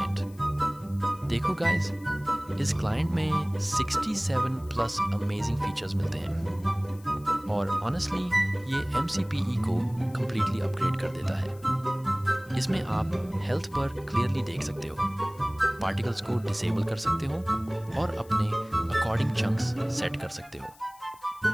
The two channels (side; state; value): left; noise; hiss, 25 dB below the sound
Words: देखो गाइस, इस क्लाइंट में 67 प्लस अमेजिंग फीचर्स मिलते हैं और ऑनेस्टली ये MCPE को कम्प्लीटली अपग्रेड कर देता है। इसमें आप हेल्थ पर क्लियरली देख सकते हो, पार्टिकल्स को डिसेबल कर सकते हो और अपने अकॉर्डिंग चंक्स सेट कर सकते हो।